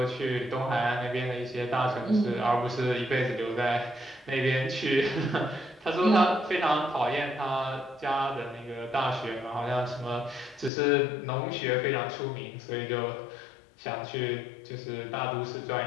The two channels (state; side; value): drops out; right; at 10.7 s